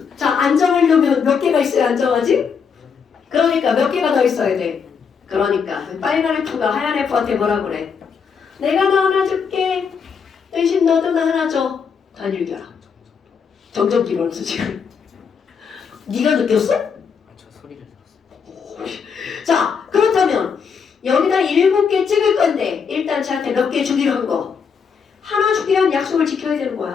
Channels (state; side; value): quieter; right; 6.3 dB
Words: 자, 안정하려면 몇 개가 있어야 안정하지? 그러니까 몇 개가 더 있어야 돼. 그러니까 빨간 F가 하얀 F한테 뭐라 그래? 내가 너 하나 줄게. 대신 너도 나 하나 줘. 단일결합. 정전기로 하면서 지금. 네가 느꼈어? 저 소리를 들었어요. 자, 그렇다면 여기다 7개 찍을 건데 일단 저한테 몇 개 주기로 한 거. 하나 주기로 한 약속을 지켜야 되는